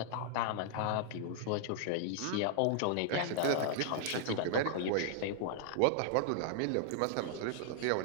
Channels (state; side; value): different; both; correlation -0.01